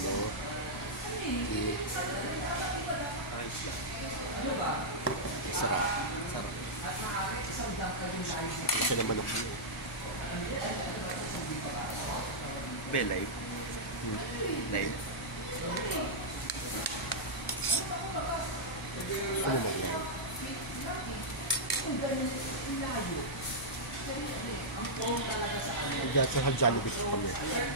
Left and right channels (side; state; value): right; noise; hum, 16 dB below the sound